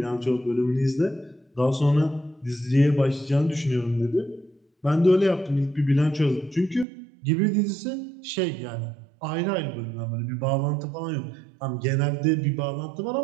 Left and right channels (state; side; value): drops out; left; at 6.9 s